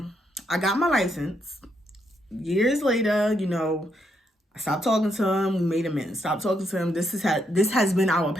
got my license. Years later, you know, I stopped talking to him. We made amends. Stopped talking to him. This has been our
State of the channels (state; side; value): normal; both; correlation 0.77